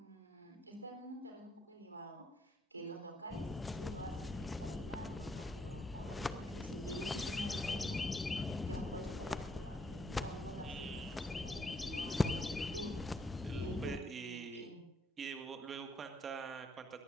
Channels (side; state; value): both; normal; correlation 0.73